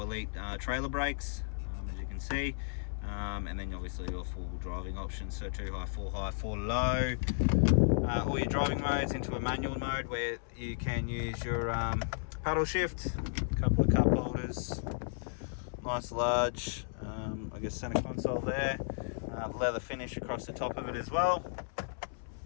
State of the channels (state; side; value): silent; right; 55 dB below the other